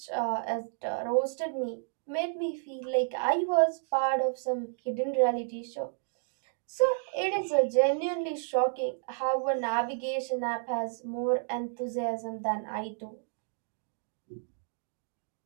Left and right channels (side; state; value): left; silent; digital silence